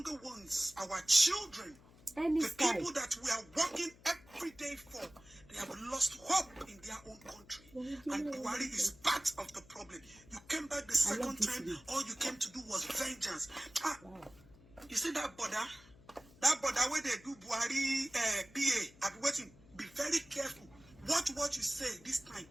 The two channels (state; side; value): noise; left; hum, 24 dB below the sound